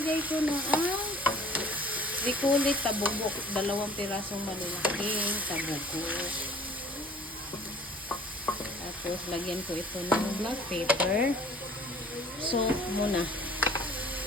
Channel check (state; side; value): normal; both; correlation 0.50